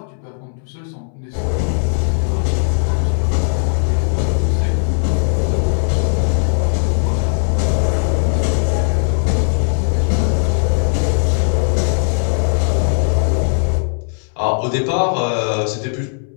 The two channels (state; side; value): silent; right; 68 dB below the other